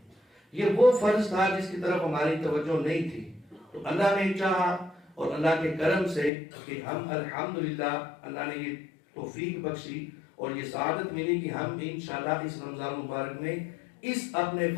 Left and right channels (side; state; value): right; drops out; at 6.3 s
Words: یہ وہ فرض تھا جس کی طرف ہماری توجہ نہیں تھی، تو اللہ نے چاہا اور اللہ کے کرم سے کہ ہم الحمدللہ اللہ نے یہ توفیق بخشی اور یہ سعادت ملی کہ ہم انشاءاللہ اس رمضان مبارک میں اس اپنے